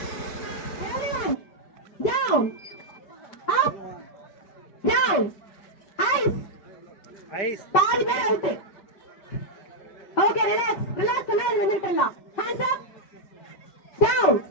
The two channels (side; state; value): right; late; 5.4 ms